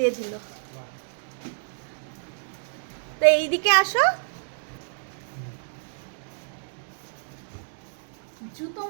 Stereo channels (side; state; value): left; silent; digital silence